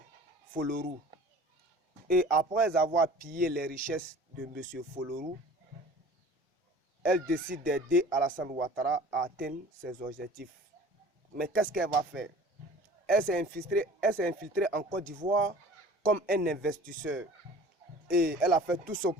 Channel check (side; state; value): both; normal; correlation 0.45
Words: Folorou. Et après avoir pillé les richesses de M. Folorou, elle décide d'aider Alassane Ouattara à atteindre ses objectifs. Mais qu'est-ce qu'elle va faire? Elle s'est infiltrée en Côte d'Ivoire comme un investisseur. Et elle a fait tout son